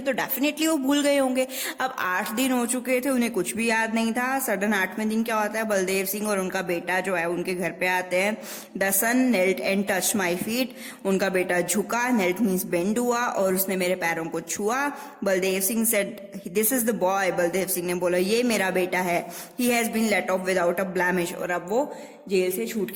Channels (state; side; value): identical; both; correlation 1.00